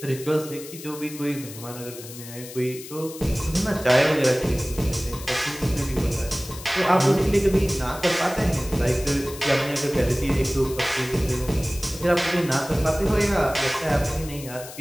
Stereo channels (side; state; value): left; noise; hiss, 14 dB below the sound